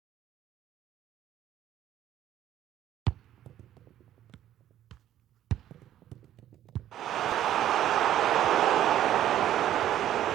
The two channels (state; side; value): quieter; left; 12.0 dB